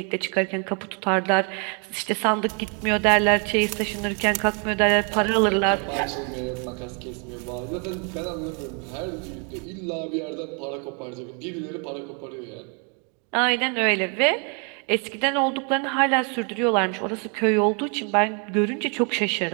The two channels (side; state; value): left; quieter; 37.2 dB